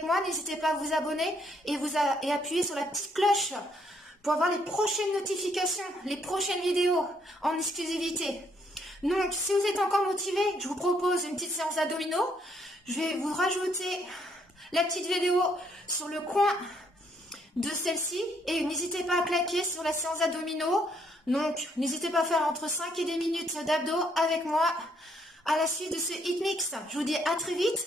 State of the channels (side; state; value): both; normal; correlation 0.70